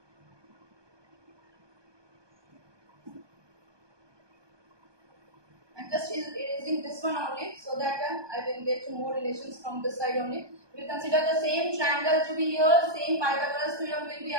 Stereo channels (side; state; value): left; late; 1.2 ms